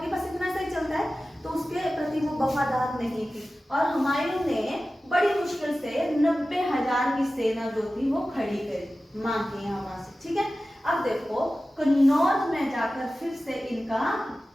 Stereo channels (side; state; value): both; normal; correlation 0.95